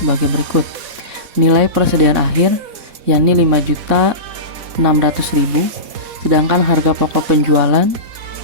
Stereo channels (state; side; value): late; left; 4.1 ms